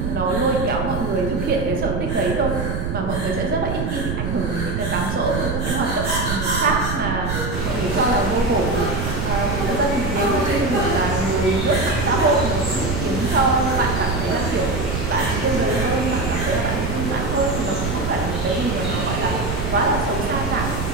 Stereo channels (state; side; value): noise; right; rumble, 3 dB below the sound